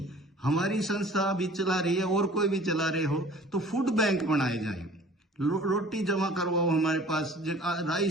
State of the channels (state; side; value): normal; both; correlation 0.48